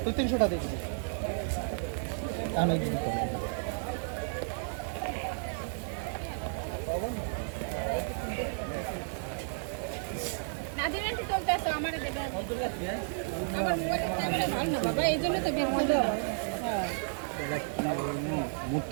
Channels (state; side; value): silent; left; digital silence